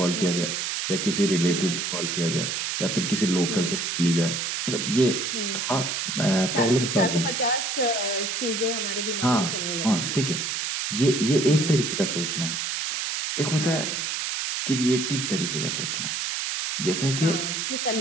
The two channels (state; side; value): noise; right; hiss, 2 dB below the sound